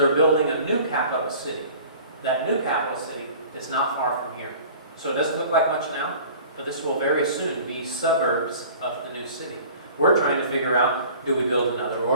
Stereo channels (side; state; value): both; inverted; correlation -0.45